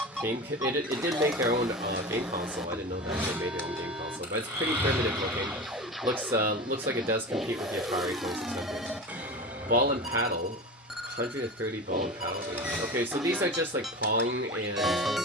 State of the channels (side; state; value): both; normal; correlation 0.29